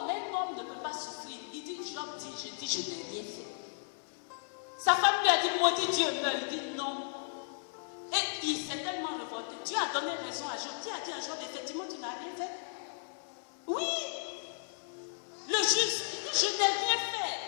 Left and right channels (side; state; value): right; silent; 55 dB below the other